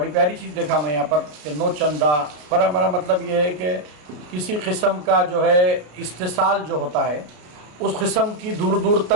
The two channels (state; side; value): late; left; 34 ms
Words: پیاری چیز دیکھا میں یہاں پر کہ نو چندہ پر، میرا مطلب یہ ہے کہ کسی قسم کا جو ہے استحصال جو ہوتا ہے اس قسم کی دور دور